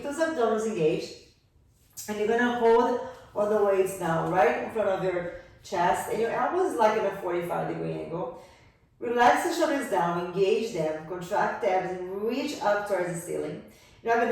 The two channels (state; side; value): identical; both; correlation 1.00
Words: those abdominals engaged. And you're gonna hold all the weights down right in front of your chest. And your elbows like in a 45-degree angle. Relax the shoulders down, engage them, contract the abs and reach up towards the ceiling. You're now